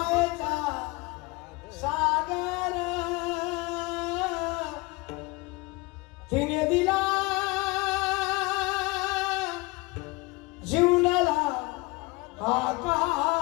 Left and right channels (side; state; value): right; quieter; 24.8 dB